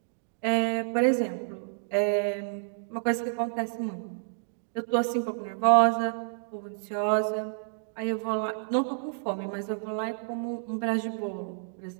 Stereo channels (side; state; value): left; silent; digital silence